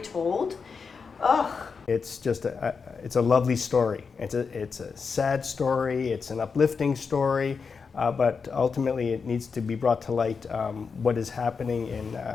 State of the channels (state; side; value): quieter; right; 5.4 dB